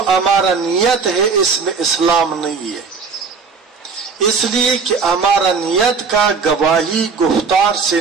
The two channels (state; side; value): quieter; left; 5.2 dB